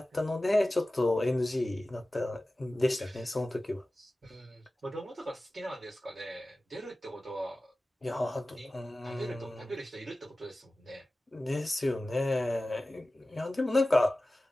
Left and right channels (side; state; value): both; normal; correlation 0.96